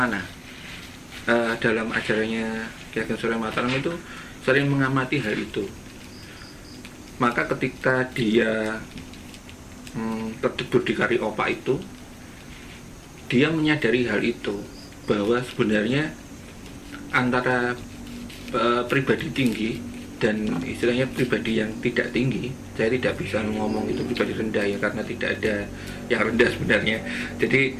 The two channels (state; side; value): identical; both; correlation 1.00